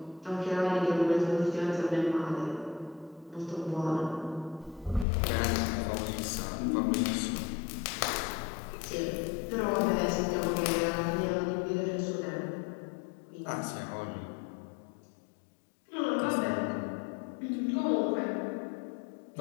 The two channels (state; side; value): drops out; right; at 5.1 s